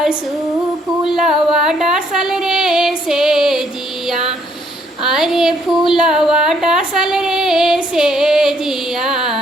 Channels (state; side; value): normal; both; correlation 0.68